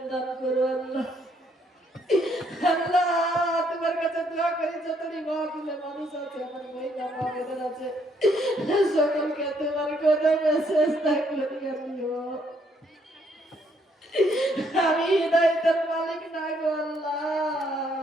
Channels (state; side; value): normal; both; correlation 0.70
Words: দান করো আল্লাহ। আল্লাহ তোমার কাছে দোয়া করি, যতই মাহফিলে মানুষ আছে, আমার মহিলা মাহফিলের আছে, সকলকে তোমার কদমে চেষ্টা করি আমিও। আমি হৃদয়ের মালিক না গো